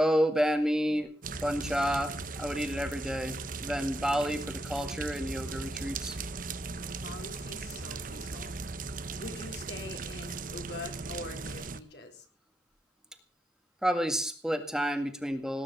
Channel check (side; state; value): both; normal; correlation 0.82